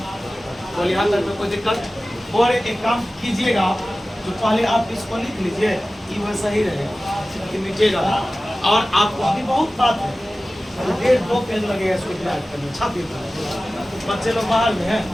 तो यहाँ तक में कोई दिक्कत। और एक काम कीजिएगा, जो पहले आप इसको लिख लीजिए, ये वैसा ही रहेगा कि नीचे जाना, और आपको अभी बहुत बात है, 1.5-2 पेज लगेगा इसको तैयार करने, छापी बच्चे लोग बाहर में हैं,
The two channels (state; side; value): normal; both; correlation 0.96